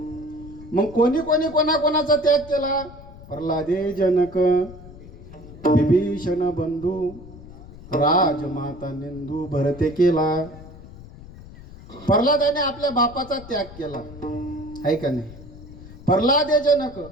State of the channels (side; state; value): left; noise; rumble, 17 dB below the sound